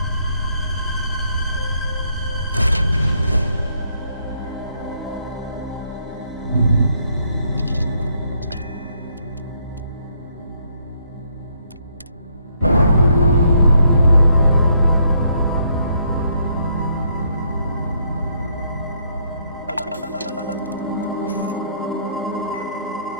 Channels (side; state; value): both; inverted; correlation -0.71